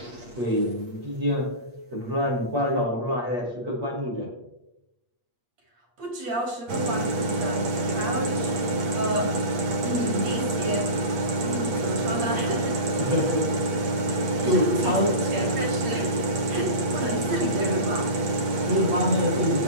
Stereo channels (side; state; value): left; late; 8.6 ms